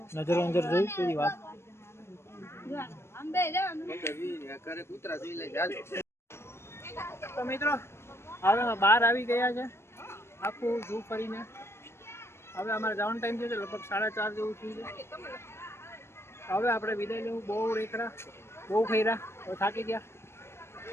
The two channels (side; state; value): right; late; 0.12 ms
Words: નજર જોઈ તેરી વાત. તો મિત્રો હવે અમે બહાર આવી ગયા છે આખું ઝૂ ફરીને. હવે અમારે જવાનો ટાઈમ થયો છે લગભગ 4:30 જેવું થયું છે. હવે આપણે વિદાય લેવું. બહુ રેખડા બહુ ખૈરા હવે થાકી ગયા.